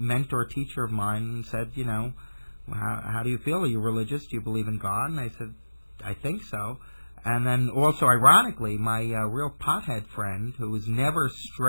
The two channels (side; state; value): both; inverted; correlation -1.00